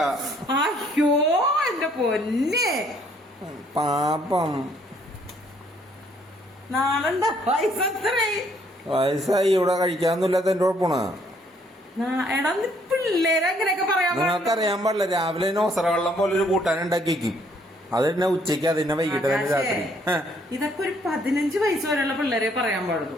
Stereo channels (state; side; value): normal; both; correlation 0.65